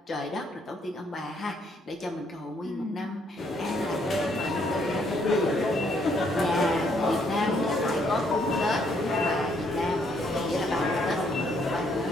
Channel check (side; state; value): both; normal; correlation 0.70